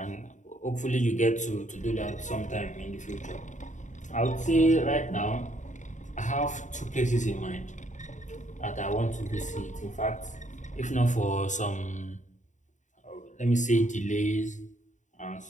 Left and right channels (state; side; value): late; right; 0.36 ms